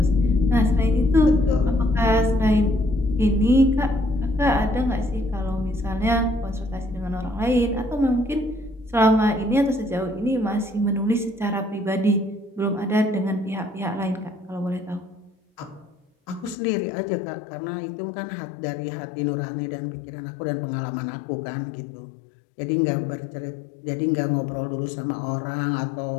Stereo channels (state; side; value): drops out; right; at 16.6 s